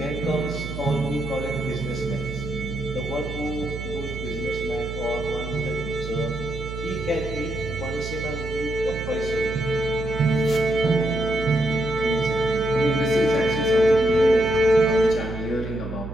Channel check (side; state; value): right; noise; hum, 8 dB below the sound